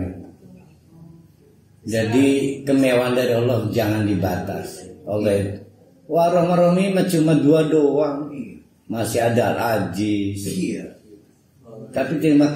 Jadi kemewahan dari Allah jangan dibatasi. Allah wah Rahman-Rahim cuma 2 doang. Masih ada Al-Aziz. Iya. Tapi terima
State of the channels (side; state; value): both; identical; correlation 1.00